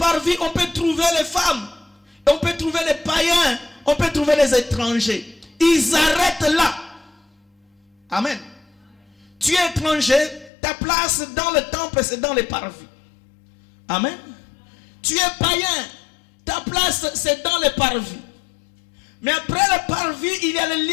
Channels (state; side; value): drops out; right; at 10.5 s